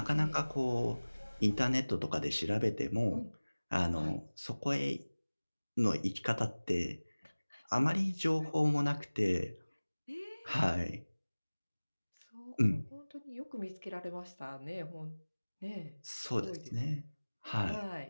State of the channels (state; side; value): inverted; both; correlation -1.00